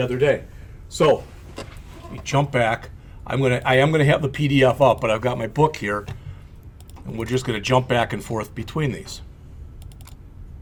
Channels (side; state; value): both; identical; correlation 1.00